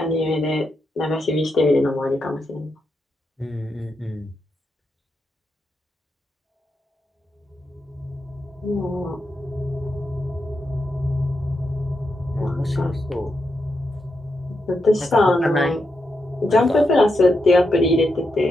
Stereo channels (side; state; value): both; normal; correlation 0.85